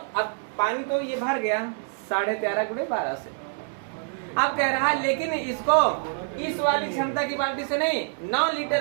अब पानी तो ये भर गया 13.5 गुणे 12 से। अब कह रहा है लेकिन इसको इस वाली क्षमता की बाल्टी से नहीं, 9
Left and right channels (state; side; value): silent; left; 59 dB below the other